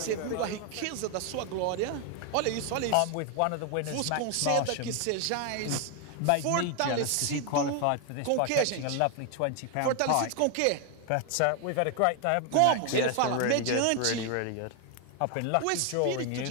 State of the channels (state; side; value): different; both; correlation 0.01